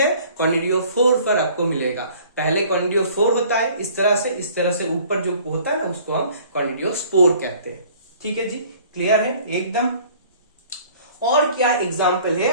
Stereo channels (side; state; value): both; inverted; correlation -0.52